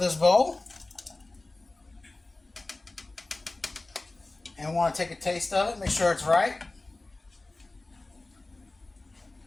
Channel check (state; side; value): quieter; right; 3.0 dB